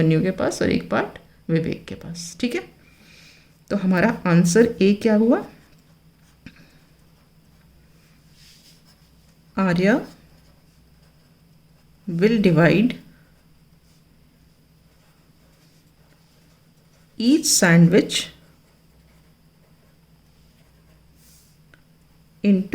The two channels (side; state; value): both; identical; correlation 1.00